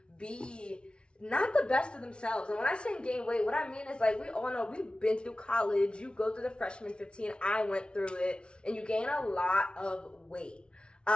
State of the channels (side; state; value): right; late; 0.057 ms